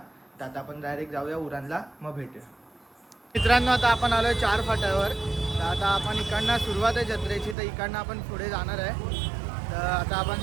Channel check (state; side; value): drops out; left; at 7.6 s